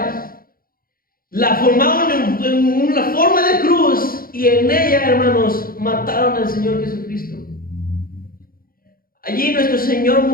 la formaron en una forma de cruz y en ella, hermanos, mataron al Señor Jesucristo. Allí nuestro Señor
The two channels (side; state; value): right; late; 0.42 ms